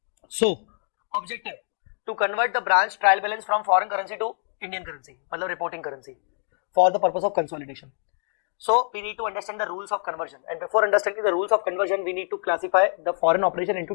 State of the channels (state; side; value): silent; right; digital silence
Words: So, objective to convert the branch trial balance from foreign currency to Indian currency, मतलब reporting currency, for the purpose of consolidation. So, we need to understand the rules of conversion, and before understanding the rules of conversion, we need to classify the foreign operation into